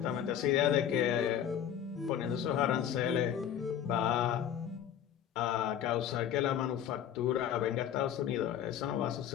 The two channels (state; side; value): quieter; right; 9.7 dB